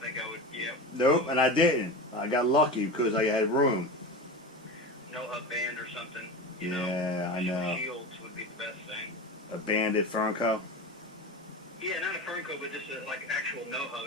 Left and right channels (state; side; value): normal; both; correlation 0.26